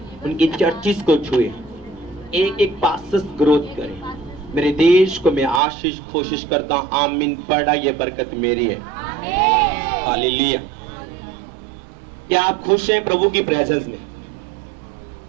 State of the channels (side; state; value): left; drops out; at 5.6 s